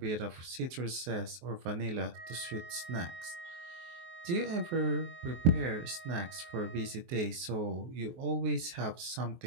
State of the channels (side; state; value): left; late; 23 ms